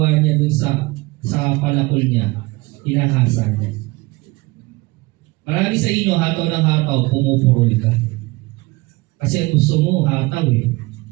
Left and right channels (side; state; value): left; quieter; 23.2 dB